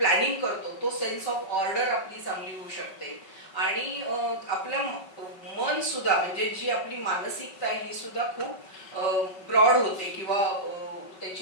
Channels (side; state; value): right; late; 5.2 ms